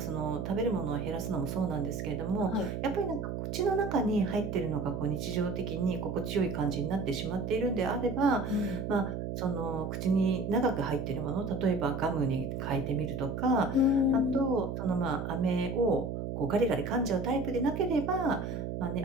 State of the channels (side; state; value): right; noise; hum, 4 dB below the sound